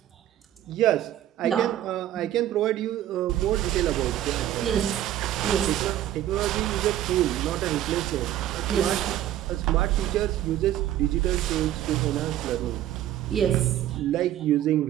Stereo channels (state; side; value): quieter; left; 12.6 dB